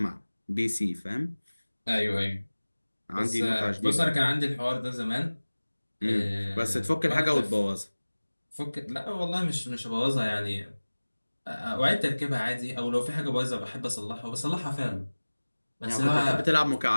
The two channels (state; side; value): inverted; both; correlation -1.00